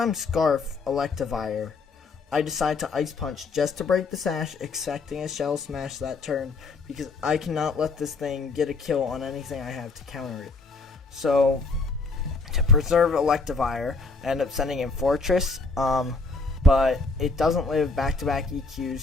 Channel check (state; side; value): quieter; right; 3.9 dB